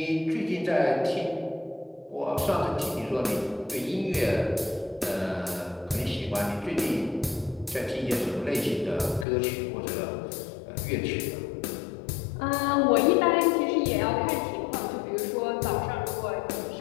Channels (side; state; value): right; drops out; at 9.2 s